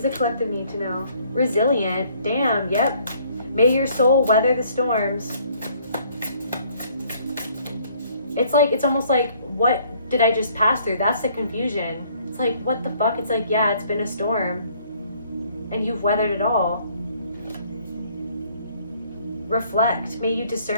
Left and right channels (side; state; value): both; inverted; correlation -0.62